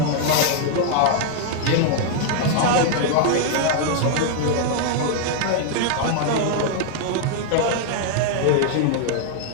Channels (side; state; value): both; different; correlation 0.00